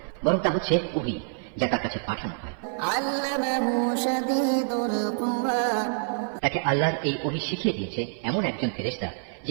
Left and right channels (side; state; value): left; silent; 55 dB below the other